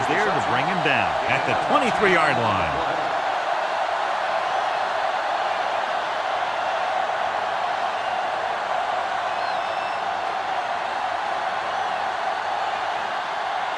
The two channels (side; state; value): both; identical; correlation 1.00